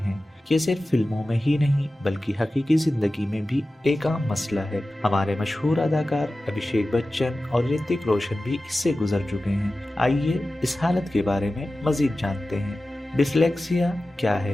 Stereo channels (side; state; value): both; normal; correlation 0.95